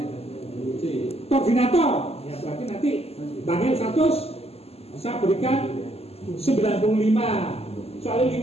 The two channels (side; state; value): right; late; 0.29 ms